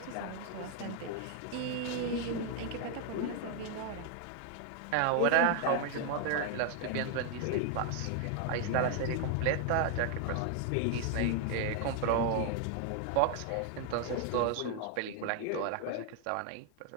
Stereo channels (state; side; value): different; both; correlation 0.00